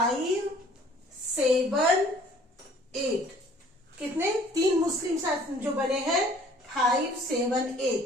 7, 8। कितने? तीन मुस्लिम शासन जो बने हैं 5, 7,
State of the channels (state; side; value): normal; both; correlation 0.55